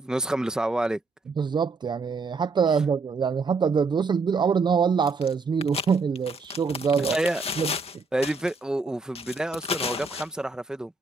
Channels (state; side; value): quieter; left; 4.1 dB